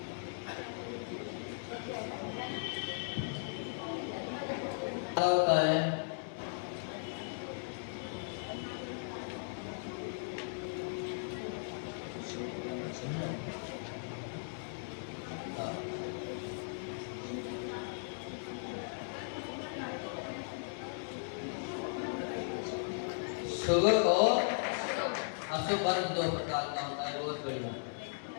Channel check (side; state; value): right; silent; digital silence